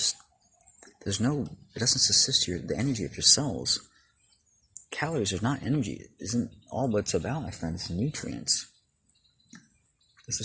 the energy of your cells. Calories are not energy. It isn't all what it's about, my friends. It's nutrients. It's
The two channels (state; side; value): identical; both; correlation 1.00